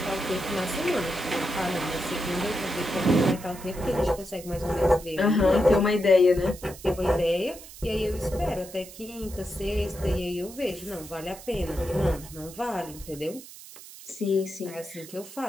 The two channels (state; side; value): noise; right; hiss, 16 dB below the sound